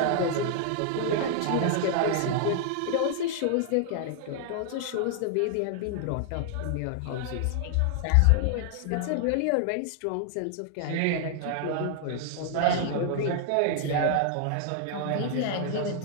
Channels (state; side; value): different; both; correlation 0.00